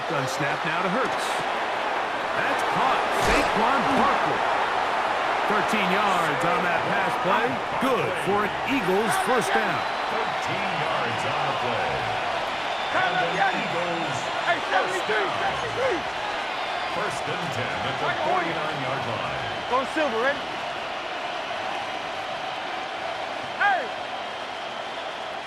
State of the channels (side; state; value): both; identical; correlation 1.00